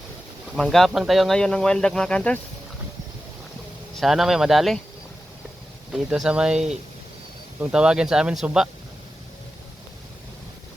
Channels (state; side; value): normal; both; correlation 0.92